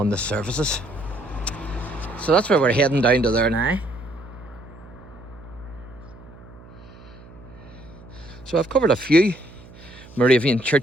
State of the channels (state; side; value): noise; right; hum, 20 dB below the sound